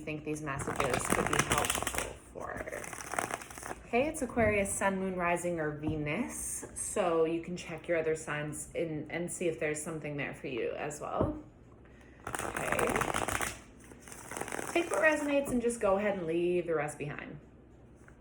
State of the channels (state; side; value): identical; both; correlation 1.00